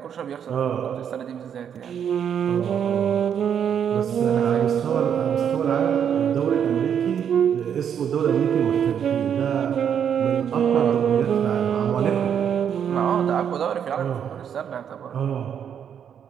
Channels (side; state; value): left; quieter; 8.4 dB